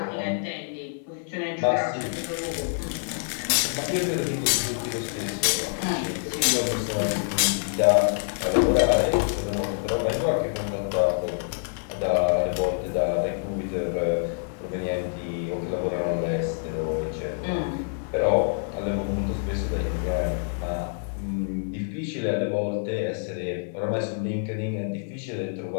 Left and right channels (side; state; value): right; silent; digital silence